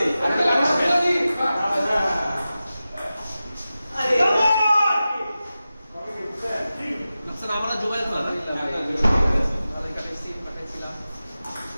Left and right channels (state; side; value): inverted; both; correlation -0.94